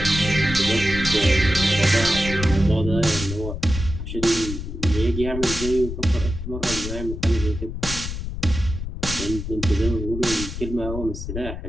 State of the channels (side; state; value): left; noise; rumble, 6 dB below the sound